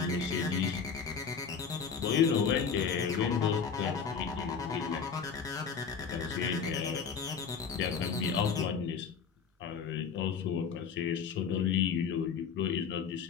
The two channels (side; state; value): right; quieter; 6.3 dB